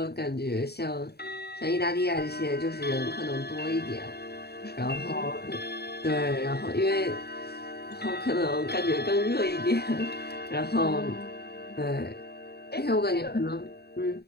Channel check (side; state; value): right; late; 0.47 ms